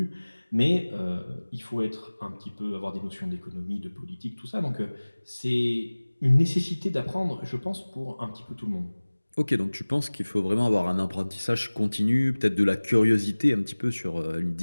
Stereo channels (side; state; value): both; inverted; correlation -1.00